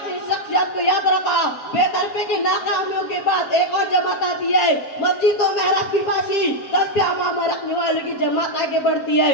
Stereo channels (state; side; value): late; right; 7.5 ms